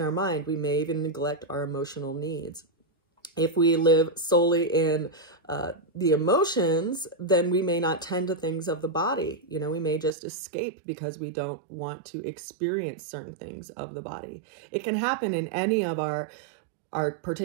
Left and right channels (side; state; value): left; drops out; at 10.1 s